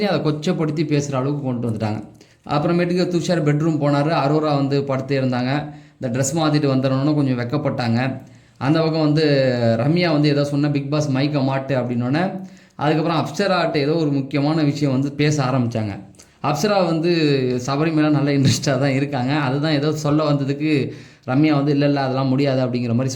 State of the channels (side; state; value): both; identical; correlation 1.00